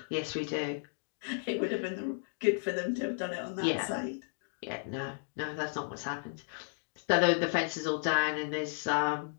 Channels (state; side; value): silent; right; digital silence